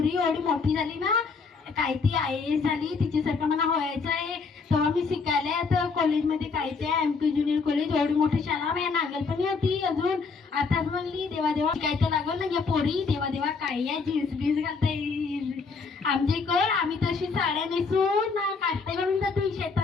एवढी मोठी झाली ना, काय ती IAS झाली, तिच्यासारखं मला व्हायचं आहे. तेव्हा मी शिकायला आता कॉलेजमध्ये काय ते MK ज्युनियर कॉलेज, एवढी मोठी शाळा माझ्या नागलपणी होती. अजून आताच म्हणली देवा देवा काय तर लागल ना या पोरी, देवा देवा काय या जीन्स बीन्स घालता येईल आमच्या इकडं. आम्ही तशी साड्या नेसून ना काष्टा घालून जातो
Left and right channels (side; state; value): right; quieter; 4.8 dB